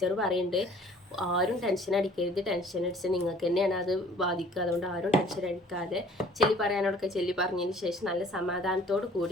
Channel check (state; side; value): normal; both; correlation 0.53